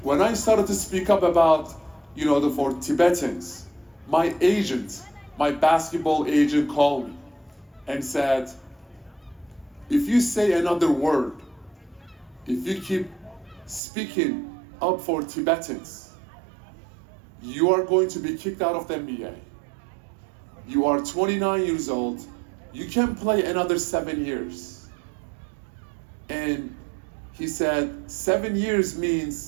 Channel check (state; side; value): drops out; left; at 13.8 s